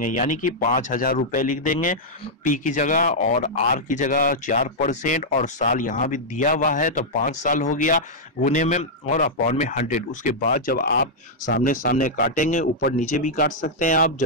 यानी कि 5000 रुपए लिख देंगे पी की जगह और आर की जगह 4% और साल यहाँ भी दिया हुआ है तो 5 साल हो गया गुने में और अपॉन में 100। उसके बाद जब आप सामने सामने काटेंगे, ऊपर नीचे भी काट सकते हैं आप,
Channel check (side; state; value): both; normal; correlation -0.06